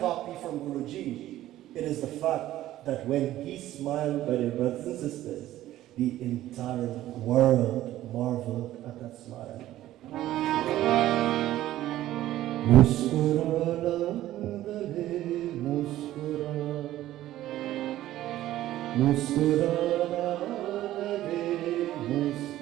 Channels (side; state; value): left; quieter; 14.2 dB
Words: from Guruji, it is the fact that when he smiled, by their brothers and sisters, the entire world marveled at that smile. मुस्कुराना रहे मुस्कुरा मुस्कुराना रहे